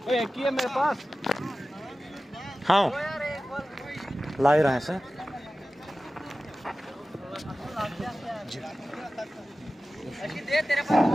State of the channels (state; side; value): normal; both; correlation 0.96